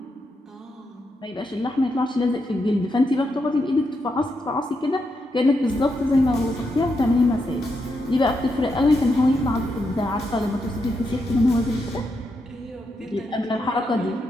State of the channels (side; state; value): both; normal; correlation 0.83